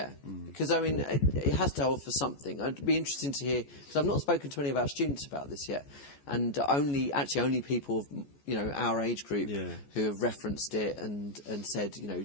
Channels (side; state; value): right; late; 14 ms